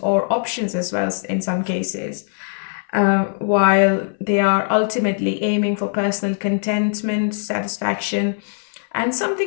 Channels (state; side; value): silent; right; 65 dB below the other